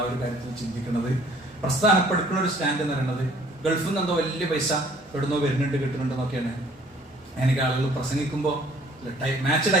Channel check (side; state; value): both; normal; correlation 0.57